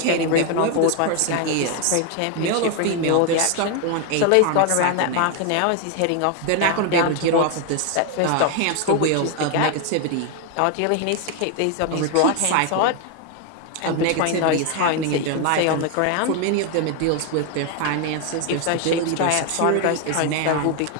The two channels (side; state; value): both; different; correlation 0.01